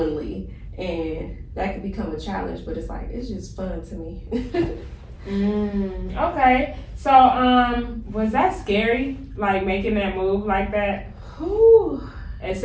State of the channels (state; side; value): identical; both; correlation 1.00